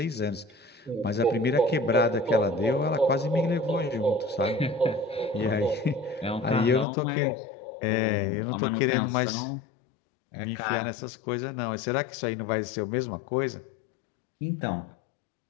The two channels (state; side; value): drops out; right; at 6.9 s